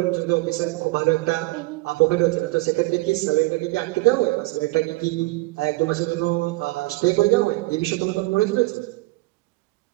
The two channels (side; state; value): left; quieter; 22.1 dB